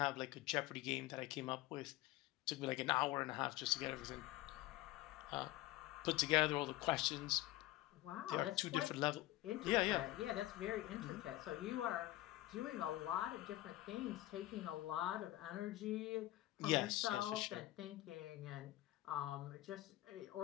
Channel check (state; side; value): quieter; right; 16.8 dB